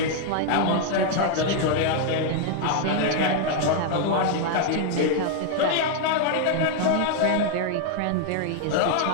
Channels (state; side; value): different; both; correlation 0.00